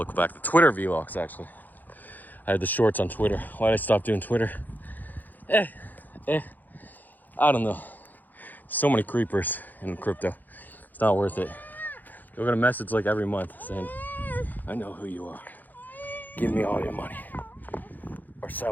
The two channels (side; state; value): right; late; 0.084 ms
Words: back. The Twitter vlogs, actually. I had the shorts on Twitter. Why did I stop doing Twitter? I don't know. So many creepers in crypto. It's not worth it. You'll get a message like every month saying, I know who you are. Give me all your money. Or